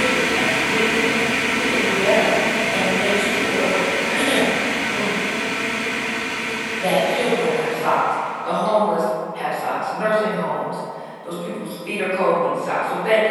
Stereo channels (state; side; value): identical; both; correlation 1.00